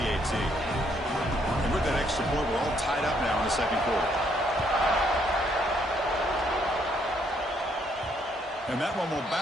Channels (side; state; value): both; normal; correlation 0.70